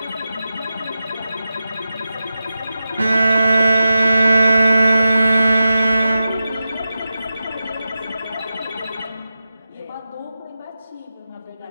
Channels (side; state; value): both; inverted; correlation -0.92